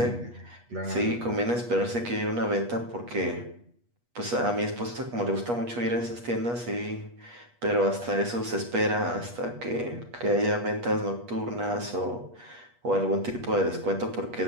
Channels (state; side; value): late; left; 8.3 ms